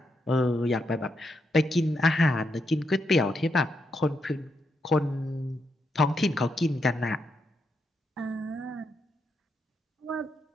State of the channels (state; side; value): normal; both; correlation 0.81